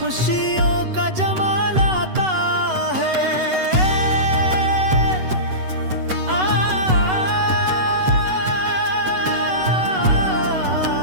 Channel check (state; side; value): late; left; 8.0 ms